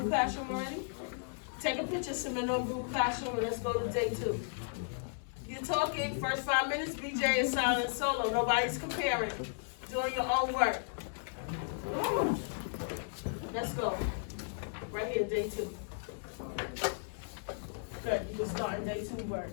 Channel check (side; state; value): right; silent; 54 dB below the other